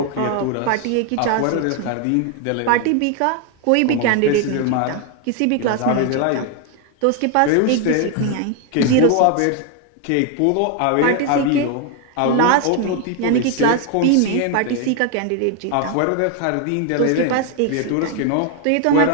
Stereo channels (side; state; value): both; different; correlation 0.01